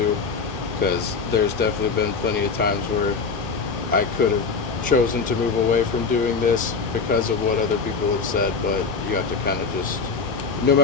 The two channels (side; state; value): right; quieter; 4.9 dB